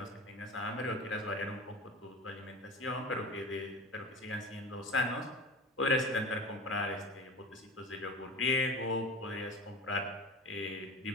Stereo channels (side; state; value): both; normal; correlation 0.33